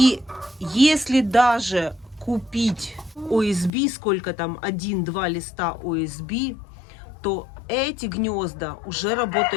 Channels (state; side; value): drops out; right; at 3.7 s